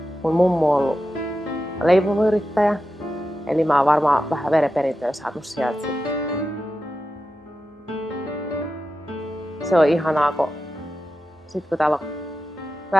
mun mummu on ollut leipomuyrittäjä. Eli mä oon varmaan vähän verenperintöä saanut sieltä. Se on ihanaa, kun täällä on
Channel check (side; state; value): both; normal; correlation 0.91